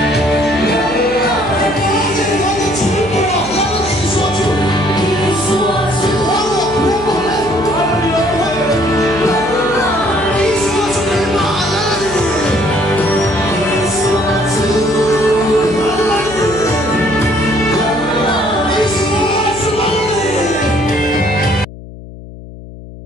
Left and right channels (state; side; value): noise; left; hum, 15 dB below the sound